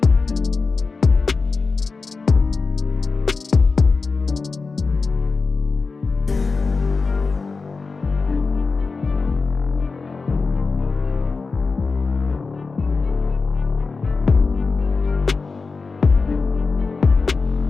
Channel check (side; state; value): right; quieter; 4.3 dB